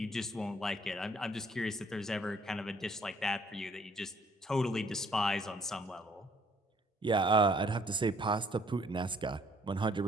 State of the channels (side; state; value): both; normal; correlation 0.63